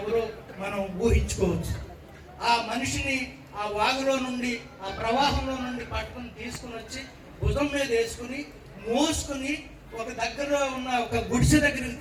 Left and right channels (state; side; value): identical; both; correlation 1.00